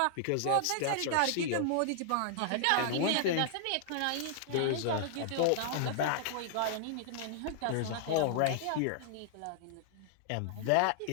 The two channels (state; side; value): different; both; correlation -0.01